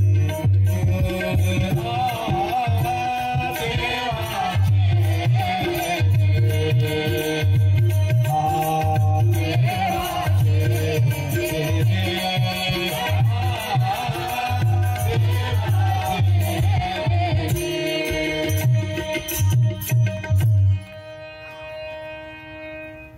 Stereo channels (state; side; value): identical; both; correlation 1.00